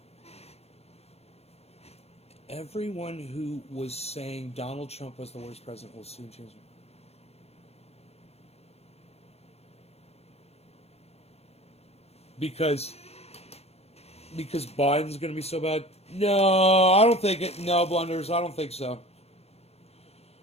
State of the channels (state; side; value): late; right; 0.30 ms